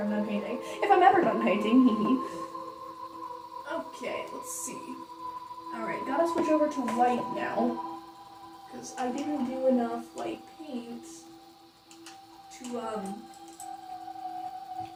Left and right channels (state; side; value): identical; both; correlation 1.00